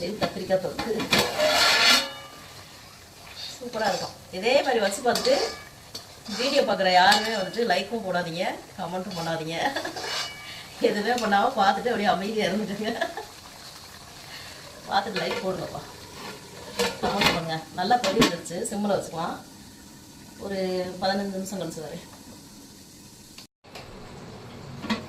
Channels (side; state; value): both; identical; correlation 1.00